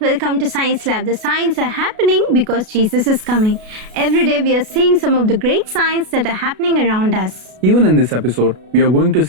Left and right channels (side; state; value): left; late; 33 ms